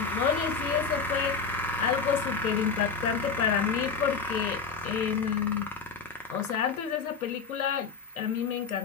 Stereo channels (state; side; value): quieter; right; 5.5 dB